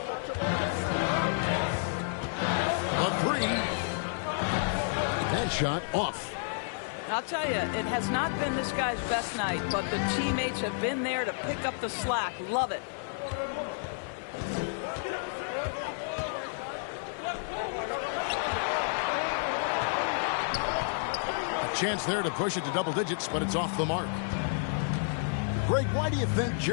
A 3. That shot off. I'll tell you, it has not been this guy's best night, but the teammates have been there to pick up the slack. Love it. A chance there to push it to double digits, but it's off the mark. Greg, why do you think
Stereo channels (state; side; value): silent; right; 57 dB below the other